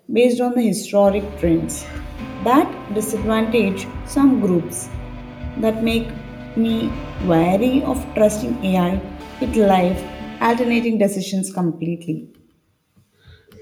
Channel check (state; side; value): identical; both; correlation 1.00